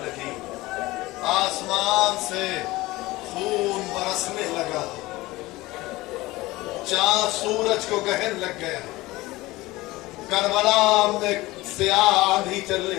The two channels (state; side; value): quieter; right; 19.6 dB